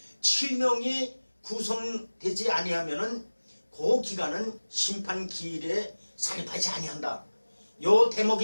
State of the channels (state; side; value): inverted; both; correlation -1.00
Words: 7명이 구성되지 아니하면은 그 기간은 심판기일에 산입하지 아니한다. 요